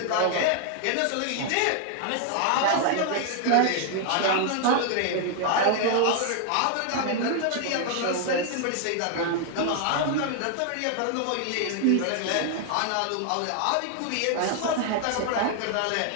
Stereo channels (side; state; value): both; different; correlation 0.00